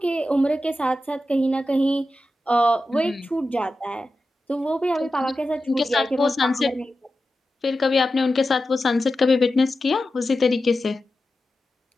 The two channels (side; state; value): both; normal; correlation 0.92